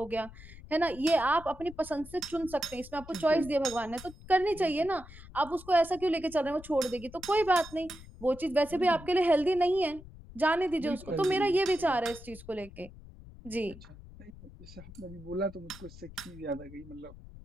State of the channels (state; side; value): noise; left; rumble, 18 dB below the sound